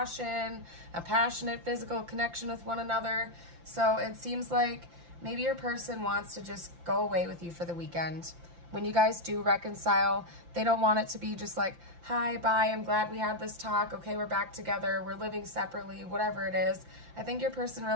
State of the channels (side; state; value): left; late; 5.8 ms